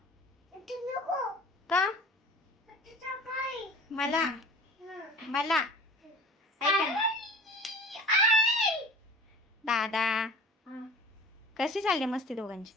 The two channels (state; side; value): normal; both; correlation 0.42